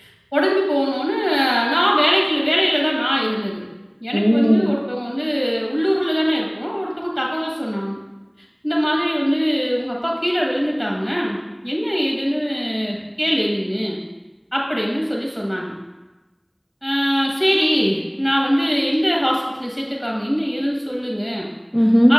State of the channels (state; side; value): identical; both; correlation 1.00